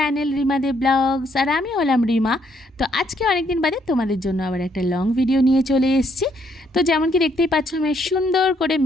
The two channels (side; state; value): both; normal; correlation 0.71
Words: Rima De blogs. আর আমি হলাম রিমা। তো আজকে অনেক দিন বাদে তোমাদের জন্য আবার একটা লং ভিডিও নিয়ে চলে এসেছি। তো যেমন কি দেখতেই পাচ্ছ, আমি সুন্দর করে